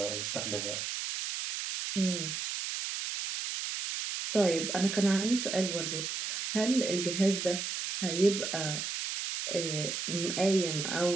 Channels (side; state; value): right; noise; hiss, 3 dB below the sound